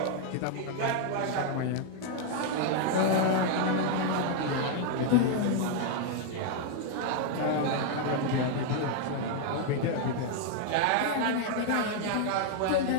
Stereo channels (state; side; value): different; both; correlation 0.00